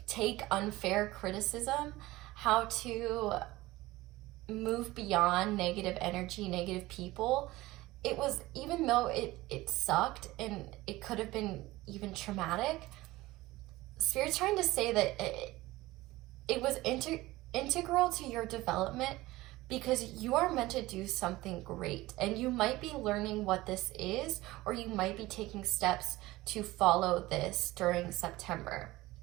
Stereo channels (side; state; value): left; quieter; 18.6 dB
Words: take unfair criticism, how to move beyond negative energy, negative people. It was, even though it sucked and it could have been even traumatic, Spirit's trying to say that it was integral to your development, because you are meant to do something great, and you might be learning what this is, or you might be taking steps to follow this during September.